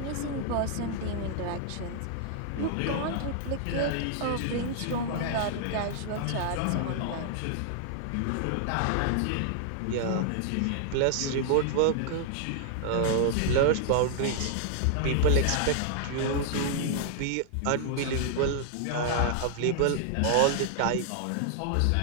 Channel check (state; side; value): different; both; correlation -0.01